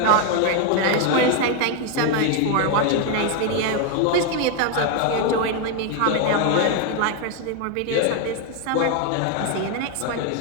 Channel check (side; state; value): both; different; correlation 0.01